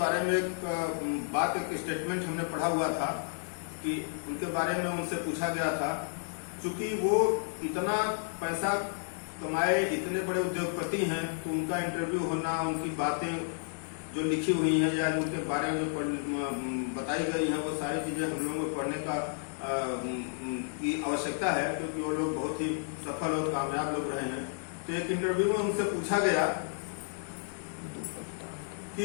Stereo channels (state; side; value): silent; right; digital silence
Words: में एक स्टेटमेंट हमने पढ़ा हुआ था कि उनके बारे में उनसे पूछा गया था, चूंकि वो इतना पैसा कमाए, इतने बड़े उद्योगपति हैं, तो उनका इंटरव्यू होना, उनकी बातें जो लिखी हुई हैं या उनके बारे में जो बताई गई हैं, वो सारी चीजें हम लोगों को पढ़ने का की आवश्यकता है, क्योंकि वो लोग बहुत ही सफल और कामयाब लोग रहे हैं। तो एक इंटरव्यू में उनसे पूछा गया कि